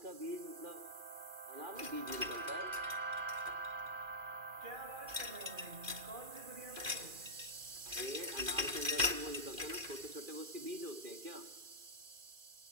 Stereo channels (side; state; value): left; late; 2.4 ms